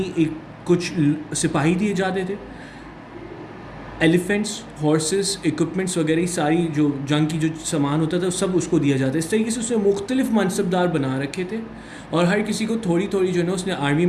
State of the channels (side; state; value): both; identical; correlation 1.00